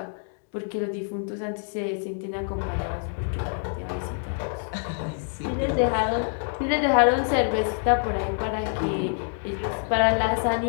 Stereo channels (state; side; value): silent; right; 61 dB below the other